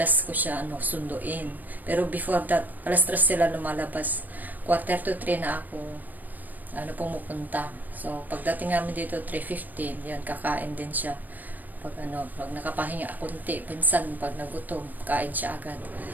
ko siya sunduin. Pero before that, alas 3 sila lumalabas. 2:45 na ako pumupunta. So pagdating namin dito 3:15, yan, kakain din siya. Pag nakapahinga konti, pinsan pag nagutom, kain siya agad.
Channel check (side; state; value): left; late; 0.086 ms